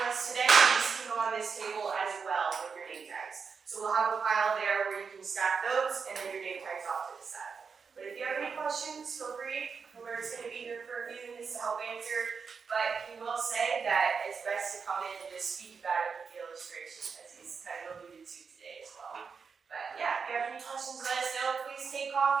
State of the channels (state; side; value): quieter; left; 5.6 dB